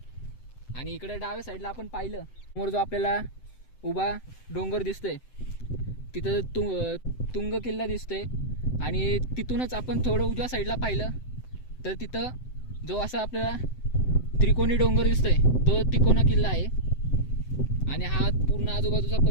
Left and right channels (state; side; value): late; right; 7.8 ms